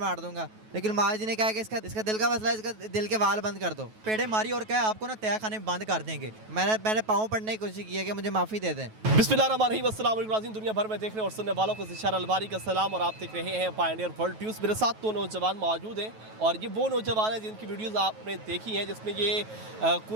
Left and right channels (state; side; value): late; left; 9.3 ms